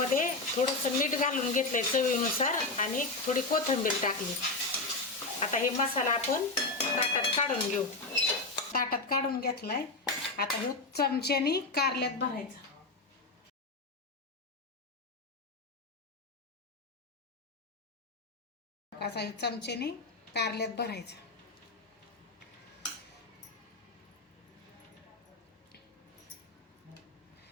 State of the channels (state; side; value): quieter; right; 3.3 dB